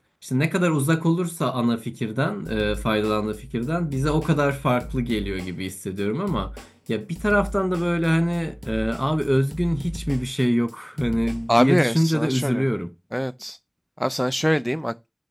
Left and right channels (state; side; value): identical; both; correlation 1.00